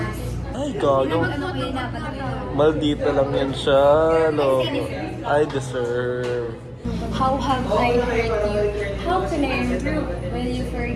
Ay, gago. Maldita lang yan siya. No. I deserve. How have I hurt you? How can I improve? Will you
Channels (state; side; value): identical; both; correlation 1.00